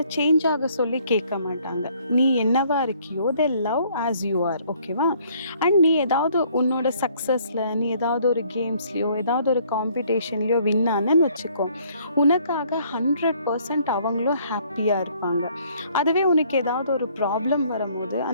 சேஞ்ச் ஆக சொல்லி கேட்க மாட்டாங்க. நீ என்னவா இருக்கியோ they love as you are, ஓகேவா? அண்ட் நீ ஏதாவது உன்னோட சக்ஸஸில் நீ ஏதாவது ஒரு கேம்ஸ்லையோ ஏதாவது ஒரு காம்படிஷன்லையோ வின் ஆனன்னு வச்சுக்கோ, உனக்காக 100% அவங்களும் ஹாப்பியாக இருப்பாங்க. அதுவே உனக்கு ஏதாவது ஒரு ப்ராப்ளம் வரும்போது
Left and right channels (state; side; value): inverted; both; correlation -0.62